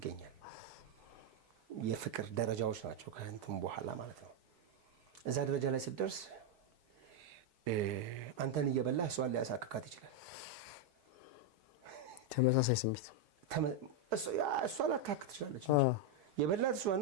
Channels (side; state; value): both; normal; correlation 0.02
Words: የፍቅር ደረጃዎች ናቸው ከእንትን በኋላ ማለት ነው። እዛ ደረጃ ላይ ስትደርስ አንተን እየበላህ እሷን ሊያሳክካት ይችላል። ተመሳሳይ ስሜት እሷ ላታክክ ትችላለች እንጂ የበላት እሷን